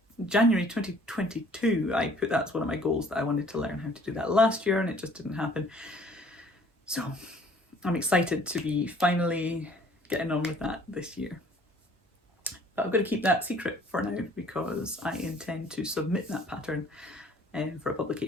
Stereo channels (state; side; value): normal; both; correlation 0.56